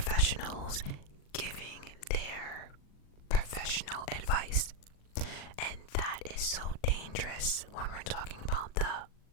giving their professional advice. And that is so dangerous when we're talking about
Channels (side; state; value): right; late; 40 ms